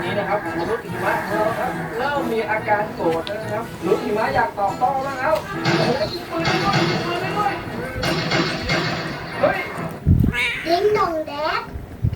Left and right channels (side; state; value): both; identical; correlation 1.00